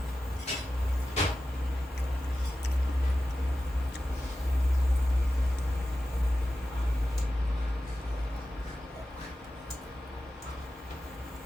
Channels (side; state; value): both; normal; correlation 0.93